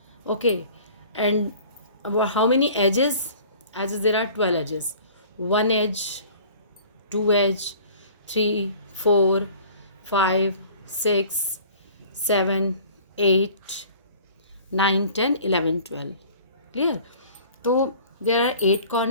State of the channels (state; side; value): inverted; both; correlation -0.48